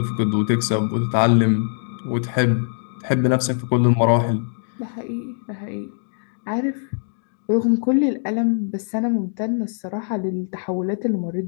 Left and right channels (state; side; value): silent; right; digital silence